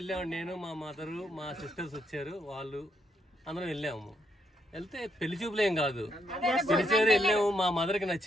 నేను, మా మదరు, మా సిస్టర్స్ వచ్చారు, వాళ్ళు అందరం వెళ్ళాము. వెళ్తే పెళ్లి చూపులేం కాదు, పిలిచారు, వెళ్ళాము. మా మదర్కి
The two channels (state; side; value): normal; both; correlation 0.76